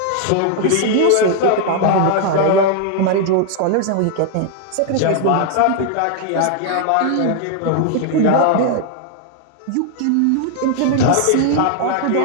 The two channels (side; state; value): both; different; correlation 0.00